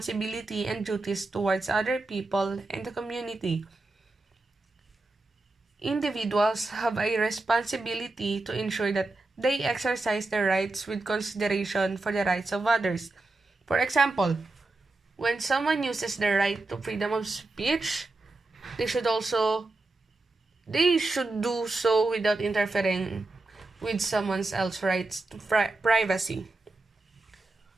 and duties towards other people and the community. Individuals have a responsibility to ensure that they exercise their rights with consideration for the rights of others. For example, when someone uses their right to freedom of speech, they should do so without interfering with someone else's rights to privacy.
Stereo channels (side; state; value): left; quieter; 3.1 dB